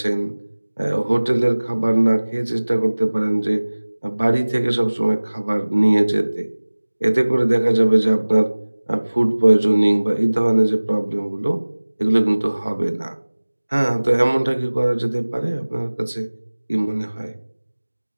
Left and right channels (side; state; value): both; inverted; correlation -1.00